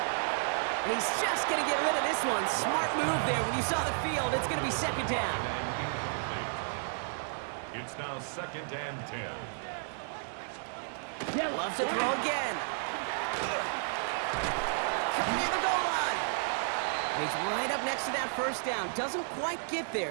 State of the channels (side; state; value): left; silent; digital silence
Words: And he's just going to get rid of this one. Smart move there. When you saw the field, it's going to be 2nd down. It's now 2nd and 10. Loves to throw again. Coming near the goal line. And he's right up next to that 1st down. Doesn't quite get